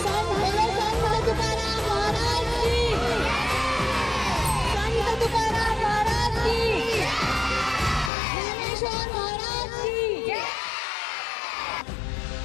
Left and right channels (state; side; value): drops out; right; at 8.1 s